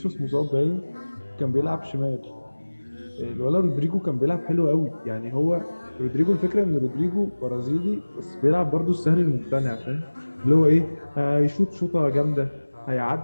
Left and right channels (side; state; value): both; inverted; correlation -1.00